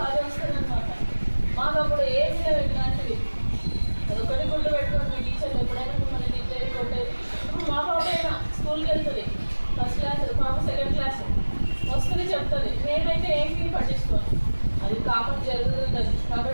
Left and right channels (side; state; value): both; inverted; correlation -1.00